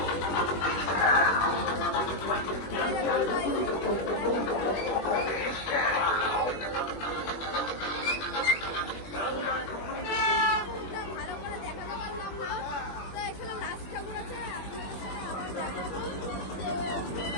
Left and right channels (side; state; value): right; late; 21 ms